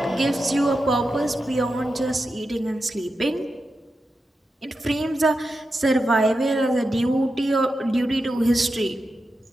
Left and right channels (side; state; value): both; normal; correlation 0.89